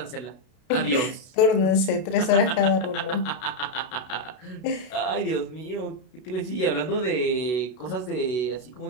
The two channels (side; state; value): right; late; 32 ms